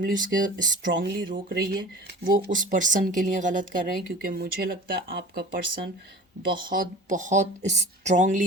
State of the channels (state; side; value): normal; both; correlation 0.40